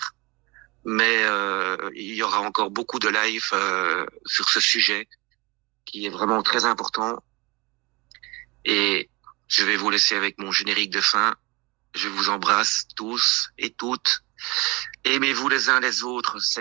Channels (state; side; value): quieter; left; 25.2 dB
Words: mais il y aura encore beaucoup de live sur ce sujet qui est vraiment très important. Et je vais vous laisser avec mon générique de fin. Je vous embrasse tous et toutes. Aimez-vous les uns les autres,